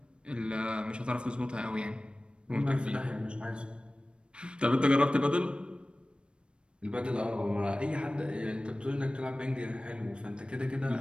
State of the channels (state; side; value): late; left; 0.055 ms